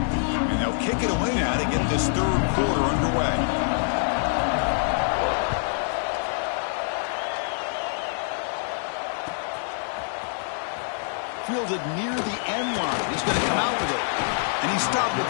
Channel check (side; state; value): right; silent; digital silence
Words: And they'll kick it away now to get this third quarter underway. Fielded near the end line. He's going to come out with it. And he stopped at